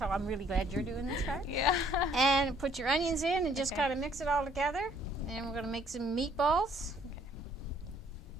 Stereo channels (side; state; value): both; normal; correlation 0.64